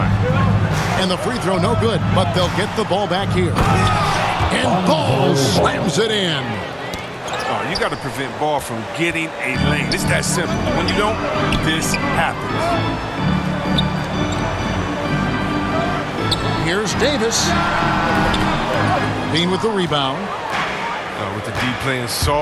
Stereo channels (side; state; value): both; identical; correlation 1.00